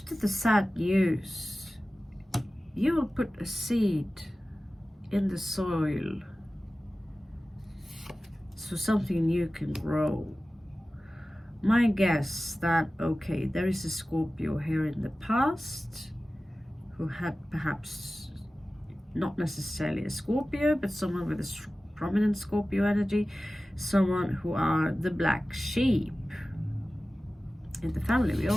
the sad news, you will put a seed in the soil so something new can grow. My guess that, okay, there is a Scorpio here in the past who had perhaps not necessarily a Scorpio, but someone with a prominent Scorpio energy, someone who are the black sheep in the family. We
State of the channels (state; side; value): normal; both; correlation 0.96